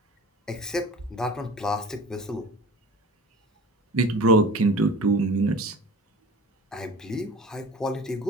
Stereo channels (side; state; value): both; normal; correlation 0.40